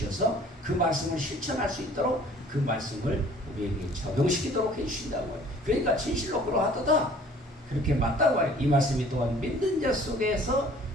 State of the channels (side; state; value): both; normal; correlation 0.53